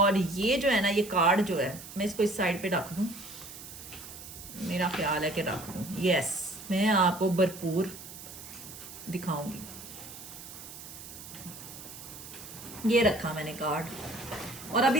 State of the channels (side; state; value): right; noise; hiss, 14 dB below the sound